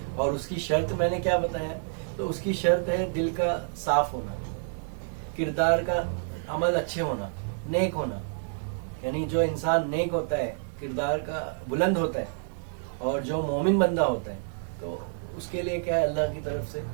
اور اس کی شرط میں نے کیا بتایا, تو اس کی شرط ہے دل کا صاف ہونا, کردار کا عمل اچھے ہونا, نیک ہونا. یعنی جو انسان نیک ہوتا ہے, کردار کا بلند ہوتا ہے, اور جو مومن بندہ ہوتا ہے, تو اس کے لیے کیا ہے, اللہ کی طرف سے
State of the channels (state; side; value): silent; left; digital silence